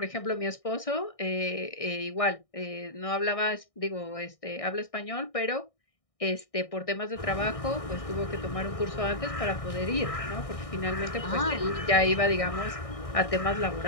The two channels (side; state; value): right; late; 1.6 ms